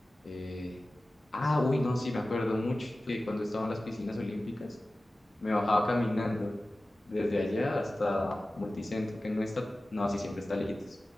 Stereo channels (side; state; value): both; normal; correlation 0.96